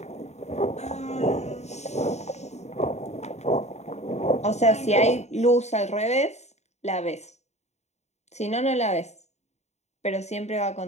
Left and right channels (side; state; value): right; late; 0.32 ms